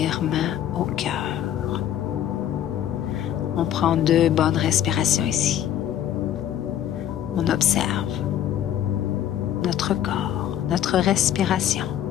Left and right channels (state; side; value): quieter; right; 10.9 dB